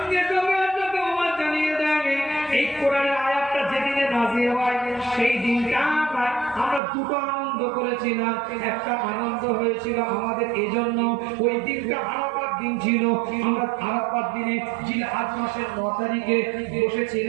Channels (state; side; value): drops out; left; at 6.8 s